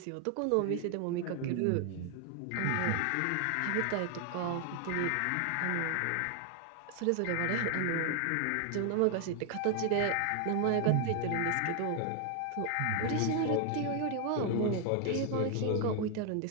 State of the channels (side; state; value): both; different; correlation 0.00